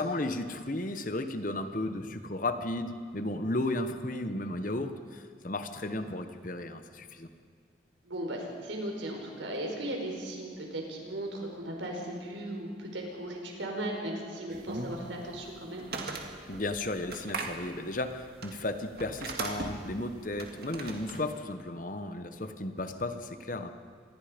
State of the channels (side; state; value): both; normal; correlation 0.37